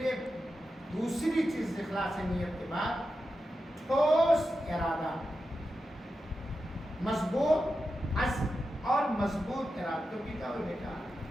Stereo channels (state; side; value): normal; both; correlation 0.90